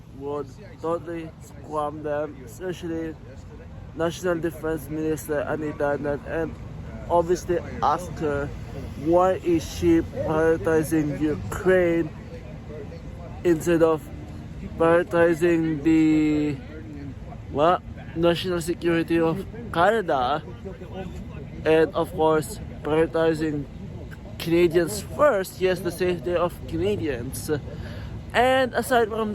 would totally scrum them, especially National Defense Minister Anita Hernandez, and obviously ask her why is she prioritizing Ukraine instead of prioritizing the national security of Canada, and of course prioritizing Canadians first, yes, the safety of Canadians. And aside from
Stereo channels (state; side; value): identical; both; correlation 1.00